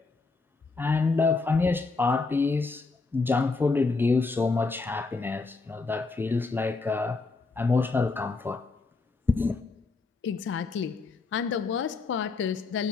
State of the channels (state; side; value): quieter; right; 4.0 dB